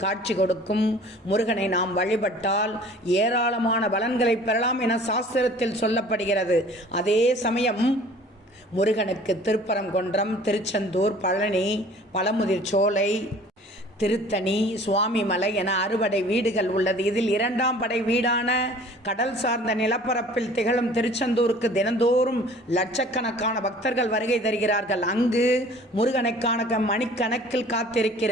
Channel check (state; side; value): normal; both; correlation 0.49